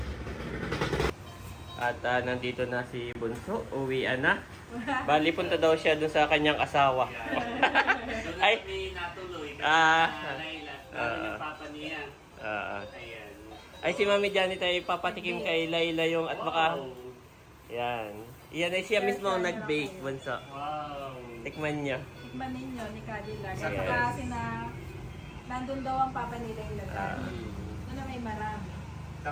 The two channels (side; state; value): both; identical; correlation 1.00